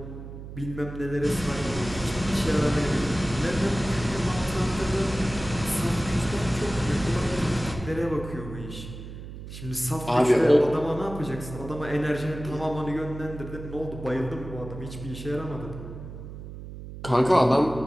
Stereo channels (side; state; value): right; noise; hum, 11 dB below the sound